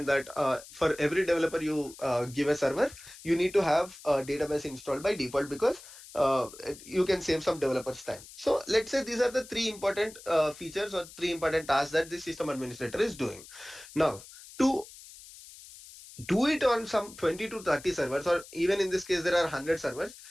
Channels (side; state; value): left; noise; hiss, 18 dB below the sound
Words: that for every developer you give a server, you need to have a database installed by default, because you can save some developers time. So let's say these are the three important features or three important tasks that the system administrator is doing. Now, to do it on some 20 to 30 servers, or even in this case there are 100 servers.